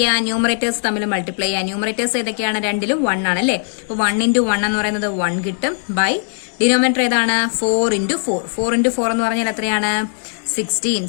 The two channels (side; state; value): right; silent; digital silence